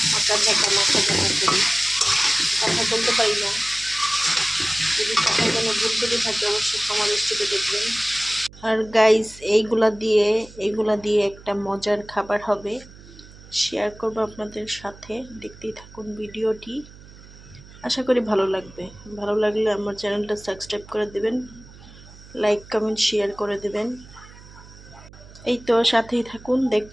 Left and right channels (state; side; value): noise; right; hum, 20 dB below the sound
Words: মাথা ঝাঁকা করি। কথা বলতে পারি না, যদি কথায় কোনো ভুল করে থাকে অবশ্যই আমার স্টুডিও দেখবেন। আর গাইস এইগুলা দিয়ে একটা মজার খাবার হবে, শেয়ার করব আপনাদের সাথে। দেখতেই থাকুন ভিডিওটি, আশা করি ভালো লাগবে। ভালো লাগলে আমার চ্যানেলটা সাবস্ক্রাইব করে দেবেন, লাইক কমেন্ট শেয়ার করে দেবেন। এই তো সাথেই থাকুন,